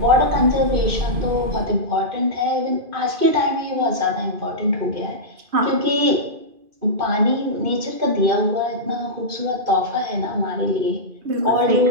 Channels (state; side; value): late; left; 2.5 ms